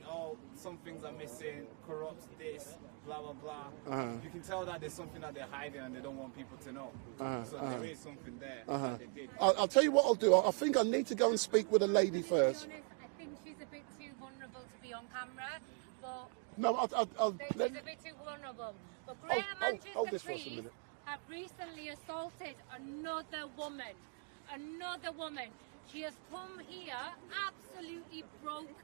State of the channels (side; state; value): left; quieter; 35.9 dB